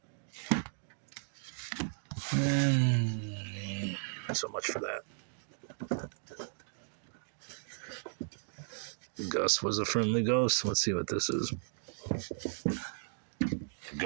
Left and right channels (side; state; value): left; silent; digital silence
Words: So much for that. Gus was a friendly ghost. Let's see what this is. The